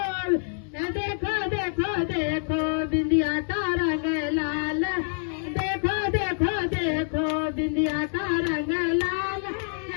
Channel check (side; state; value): right; silent; digital silence